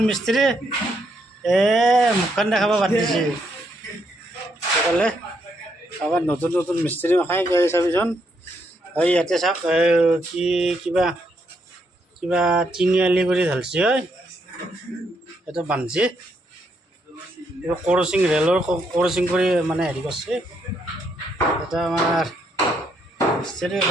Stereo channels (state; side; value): normal; both; correlation 0.76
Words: মিস্ত্ৰী মুখখন দেখাব বাদ দিছে সেইফালে আবার নতুন নতুন মিস্ত্রি খাই গৈ চাবিচোন এই ইয়াতে চাওক কি কিবা কিবা তিনিআলি কৰি ঢালছি হয় এইটো বান্ধছি এইটো ক্ৰচিং ৰেলৰ ক্ৰচিং কৰি মানে হেৰি কৰিছে এটা আমাৰ মিস্ত্ৰি